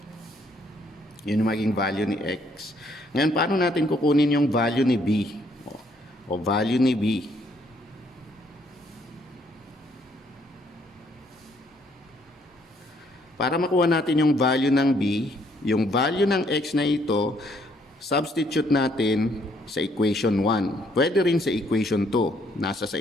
Yun yung maging value ni x. Ngayon, paano natin kukunin yung value ni b? O value ni b. Para makuha natin yung value ng b, yung value ng x na ito, substitute natin sa equation 1. Pwede rin sa equation 2. Nasa sa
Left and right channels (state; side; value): normal; both; correlation 0.68